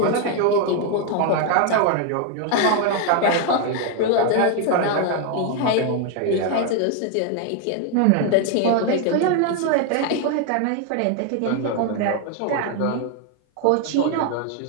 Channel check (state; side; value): different; both; correlation 0.01